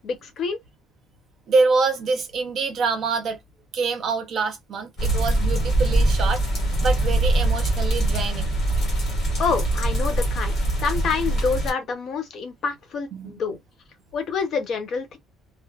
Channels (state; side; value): normal; both; correlation 0.74